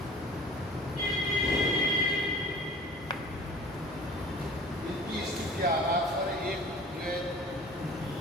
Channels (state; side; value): normal; both; correlation 0.43